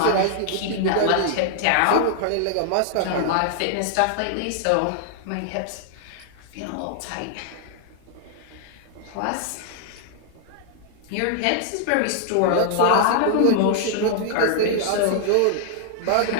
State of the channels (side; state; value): both; different; correlation -0.01